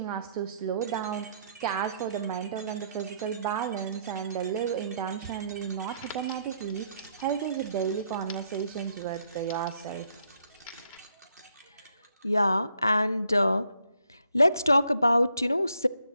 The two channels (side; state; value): both; inverted; correlation -0.71